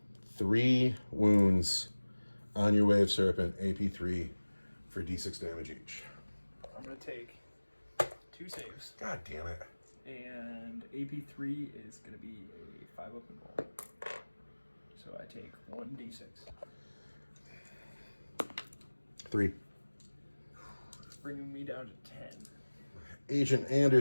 3 wounds on your Wave Serpent, AP3 for D6 damage each. I'm going to take 2 saves. God damn it. And AP3 is going to be a 5 up and roll. So I take 1d6. 3. Bringing me down to 10. Agent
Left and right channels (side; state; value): both; inverted; correlation -1.00